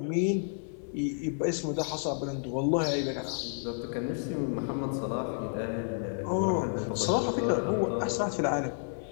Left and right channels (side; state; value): right; silent; 57 dB below the other